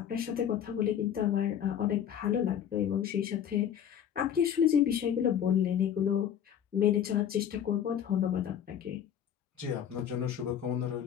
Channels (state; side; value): quieter; right; 9.3 dB